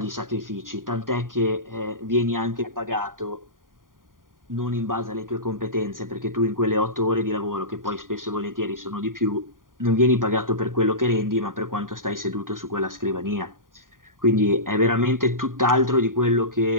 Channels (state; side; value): late; left; 0.90 ms